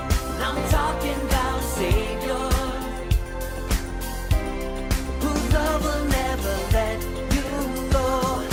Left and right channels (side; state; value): both; identical; correlation 1.00